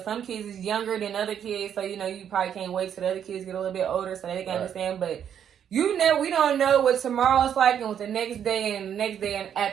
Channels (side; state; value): left; quieter; 8.9 dB